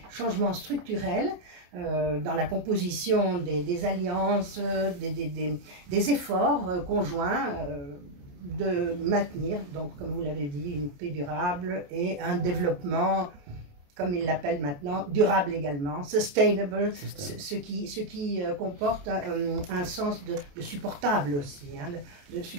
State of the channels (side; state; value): left; late; 28 ms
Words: changements structurels dans la composition des alliances, des efforts conjoints de maintenir, donc comme vous l'avez dit, une paix durable et un développement, comme ils l'appellent maintenant, durable également, sustainable, ce qui comporte un sens de supportable aussi, hein, de